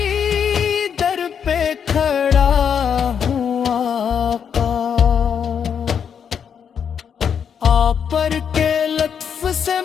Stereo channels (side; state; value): right; quieter; 7.5 dB